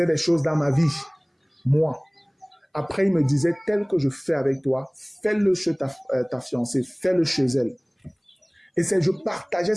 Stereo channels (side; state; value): both; identical; correlation 1.00